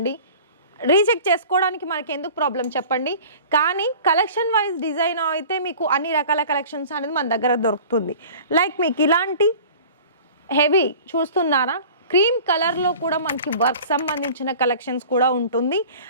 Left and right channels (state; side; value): inverted; both; correlation -0.43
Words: రీచెక్ చేసుకోవడానికి మనకి ఎందుకు ప్రాబ్లం చెప్పండి. కానీ కలెక్షన్ వైజ్ డిజైన్ అయితే మీకు అన్ని రకాల కలెక్షన్స్ అనేది మన దగ్గర దొరుకుతుంది. లైక్ మీకు ఇలాంటి హెవీ చూస్తున్నారా, క్రీమ్ కలర్లో కూడా మనకి వర్క్ సంబంధించిన కలెక్షన్స్ కూడా ఉంటుంది.